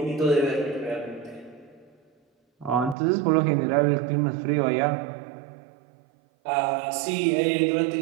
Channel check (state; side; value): drops out; left; at 3.0 s